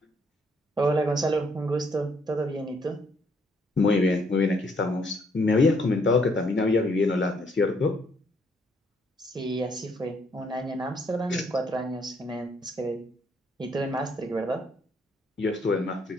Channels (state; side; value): normal; both; correlation 0.69